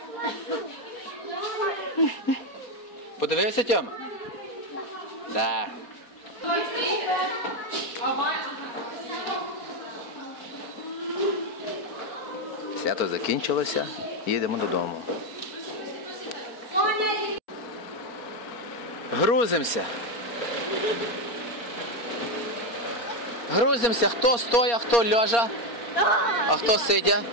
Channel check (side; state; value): right; late; 4.3 ms